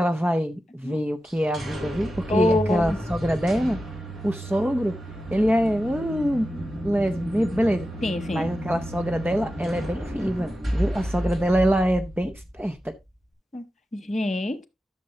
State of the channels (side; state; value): both; normal; correlation 0.92